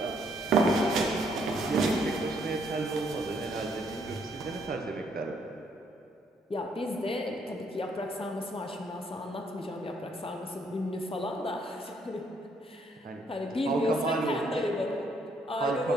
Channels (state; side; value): normal; both; correlation 0.70